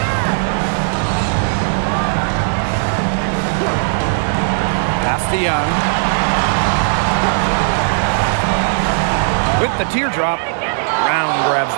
Pass to Young. With the teardrop, Brown grabs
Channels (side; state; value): left; silent; digital silence